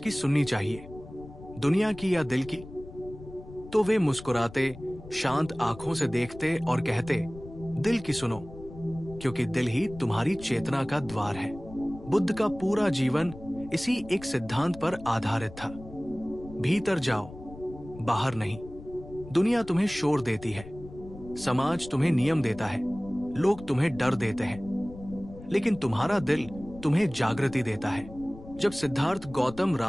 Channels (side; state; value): left; noise; rumble, 16 dB below the sound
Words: सुननी चाहिए, दुनिया की या दिल की, तो वे मुस्कुराते, शांत आंखों से देखते और कहते, दिल की सुनो, क्योंकि दिल ही तुम्हारी चेतना का द्वार है। बुद्ध का पूरा जीवन इसी एक सिद्धांत पर आधारित था। भीतर जाओ, बाहर नहीं। दुनिया तुम्हें शोर देती है, समाज तुम्हें नियम देता है, लोग तुम्हें डर देते हैं, लेकिन तुम्हारा दिल तुम्हें जागृति देता है। जब सिद्धार्थ गौतम